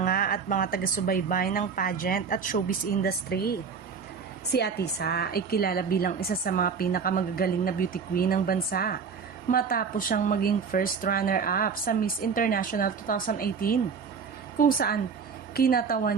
at mga taga-subaybay ng pageant at showbiz industry. Si Atisa ay kilala bilang isa sa mga pinakamagagaling na beauty queen ng bansa matapos siyang maging first runner-up sa Miss International 2018 kung saan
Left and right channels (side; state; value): left; quieter; 5.9 dB